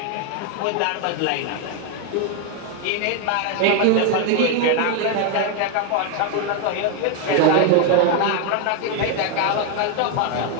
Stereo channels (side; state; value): both; different; correlation 0.01